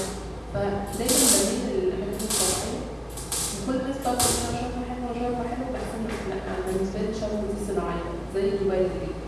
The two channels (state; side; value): identical; both; correlation 1.00